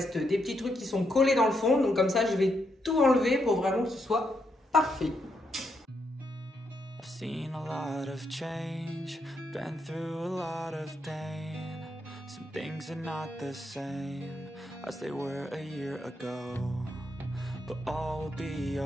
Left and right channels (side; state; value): both; normal; correlation 0.79